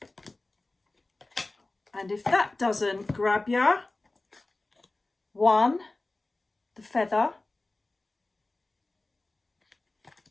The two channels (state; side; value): quieter; right; 3.0 dB